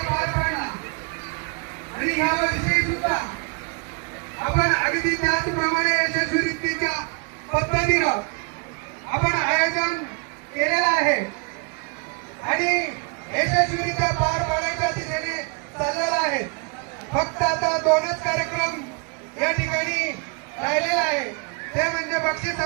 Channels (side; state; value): left; quieter; 34.1 dB